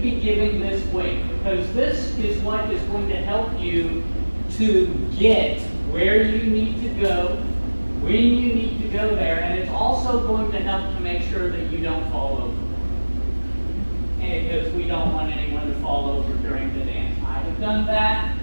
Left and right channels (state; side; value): inverted; both; correlation -1.00